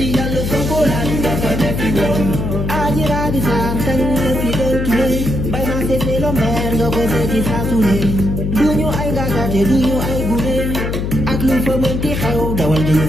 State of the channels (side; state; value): left; noise; hum, 2 dB below the sound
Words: Yàlla Sonko lan nga pawutiwon. Aji Rabi Sarr kañ la fi doon tuddee. Bay naa seetee lo mer nga ko seeti saa su ne. Duñu ay gàggate duñu ay gune. Ak lu fa mënti xew dawal jël